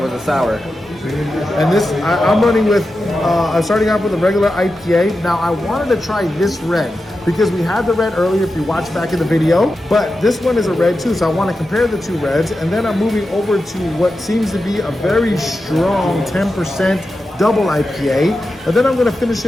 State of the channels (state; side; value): normal; both; correlation 0.91